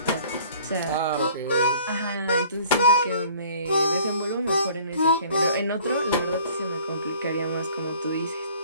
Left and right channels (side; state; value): both; inverted; correlation -0.53